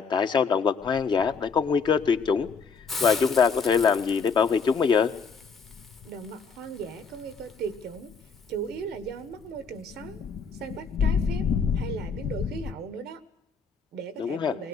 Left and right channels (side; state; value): right; quieter; 5.2 dB